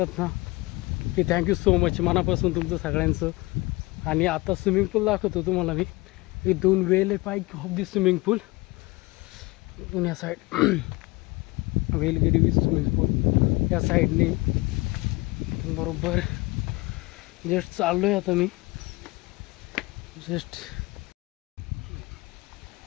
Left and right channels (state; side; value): quieter; right; 22.7 dB